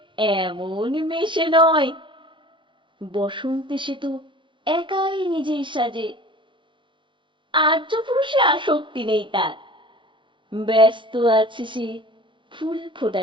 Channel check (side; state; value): left; late; 0.24 ms